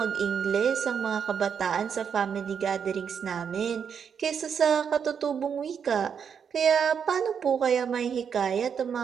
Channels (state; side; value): quieter; left; 7.2 dB